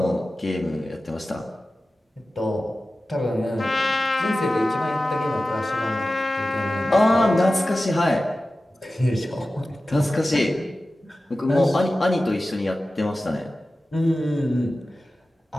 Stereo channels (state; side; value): normal; both; correlation 0.95